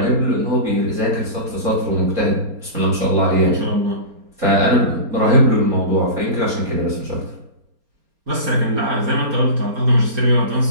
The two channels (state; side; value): late; left; 4.3 ms